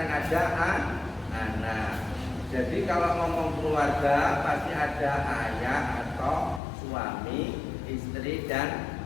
ada anak. Jadi kalau ngomong keluarga pasti ada ayah atau suami, istri, dan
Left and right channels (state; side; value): drops out; right; at 6.6 s